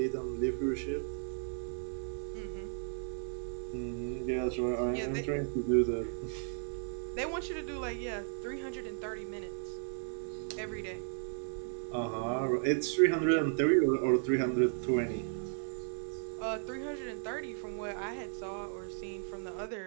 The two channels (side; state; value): left; silent; 54 dB below the other